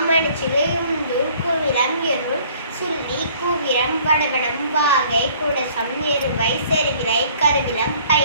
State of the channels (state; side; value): inverted; both; correlation -0.56